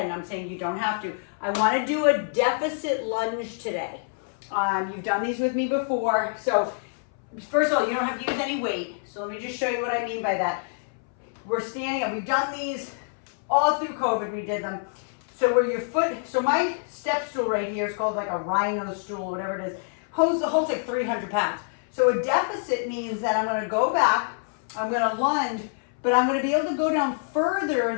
I'm saying you don't have to. I want to do a deficit lunge today. You've done these with me before. So first of all, you don't have to use any weight. So let me just show you what I mean by that. We're standing up. We've done these all through COVID. We did them. So where your foot, so my step stool right here is called like a rhino stool, whatever it is, holds like 300 pounds. So a deficit means that I'm going to go back, I'm going to lunge, but I'm going to be able to go down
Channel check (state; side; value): silent; right; 61 dB below the other